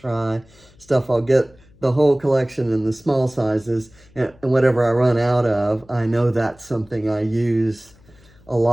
stuff. I'll get the whole collection in the small sizes, and whatever I run out of, I know that's something I use a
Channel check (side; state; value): left; noise; hum, 28 dB below the sound